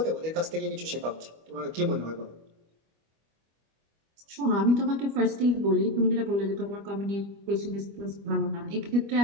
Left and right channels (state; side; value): late; left; 25 ms